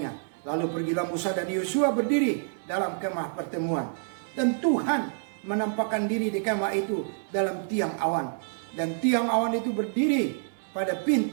Lalu pergilah Musa dan Yosua berdiri dalam kemah pertemuan. Dan Tuhan menampakkan diri di kemah itu dalam tiang awan. Dan tiang awan itu berdiri pada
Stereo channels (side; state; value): left; silent; digital silence